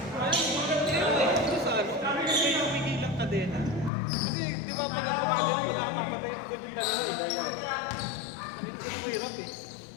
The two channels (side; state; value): right; drops out; at 3.9 s